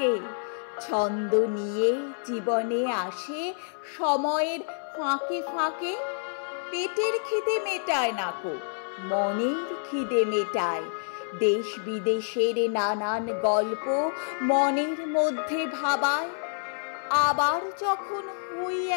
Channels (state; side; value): silent; right; 59 dB below the other